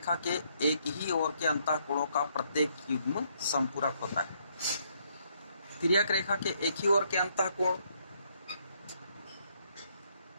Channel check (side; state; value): both; inverted; correlation -0.71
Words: के एक ही ओर के अंतःकोणों का प्रत्येक युग्म समपूरक होता है। तिर्यक रेखा के एक ही ओर के अंतःकोण,